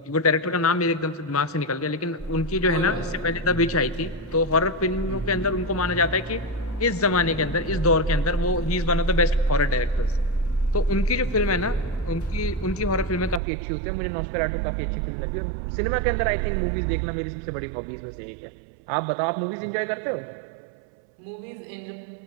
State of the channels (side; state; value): left; drops out; at 13.4 s